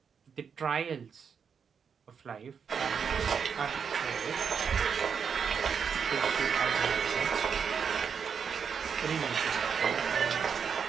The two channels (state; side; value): quieter; left; 6.6 dB